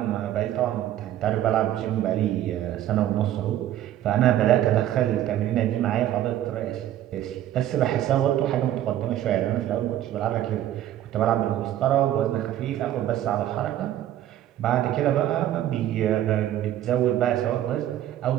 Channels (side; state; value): left; quieter; 12.4 dB